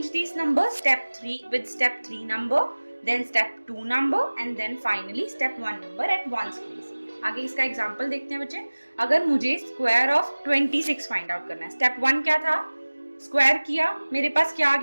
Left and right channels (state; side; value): inverted; both; correlation -1.00